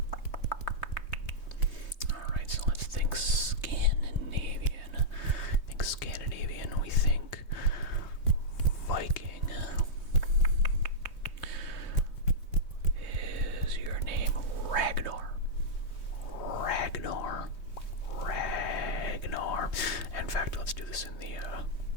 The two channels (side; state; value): right; late; 3.2 ms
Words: Alright, so let's think Scandinavian. We think Viking. Is your name Ragnar? In fact, let's do this in